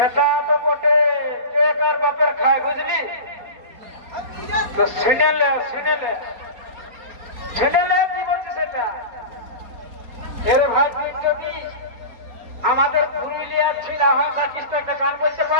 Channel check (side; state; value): left; late; 4.3 ms